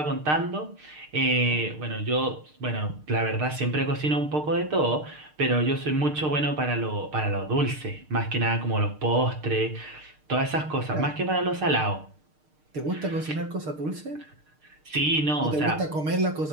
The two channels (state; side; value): late; left; 6.6 ms